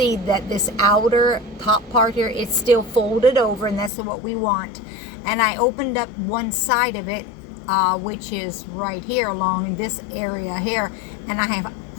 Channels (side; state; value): right; drops out; at 3.9 s